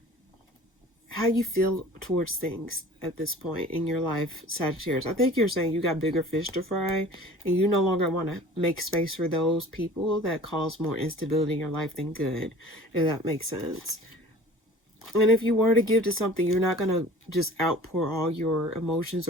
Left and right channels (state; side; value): normal; both; correlation 0.45